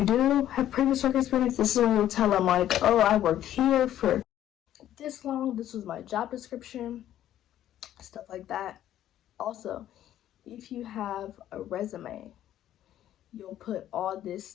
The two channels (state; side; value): quieter; right; 12.0 dB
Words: do have previous work experience, this is when you'll tell them, "Oh, I worked here for this long. This was my job description," stuff like that. Also, if you have a resume, you'll put all this